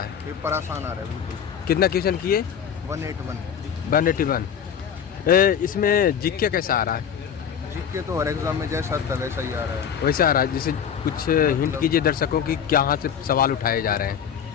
पेपर आसान आ रहा है बिल्कुल। कितना क्वेश्चन किए? 181 181। इसमें जीके कैसा आ रहा है? जीके तो हर एग्जाम में जैसा था वैसा ही आ रहा है। वैसा आ रहा है, जैसे कुछ हिंट कीजिए दर्शकों की कहाँ से सवाल उठाए जा रहे हैं।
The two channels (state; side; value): quieter; right; 8.1 dB